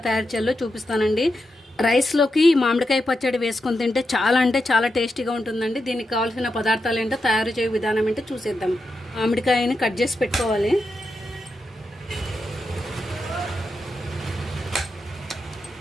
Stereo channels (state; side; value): normal; both; correlation 0.87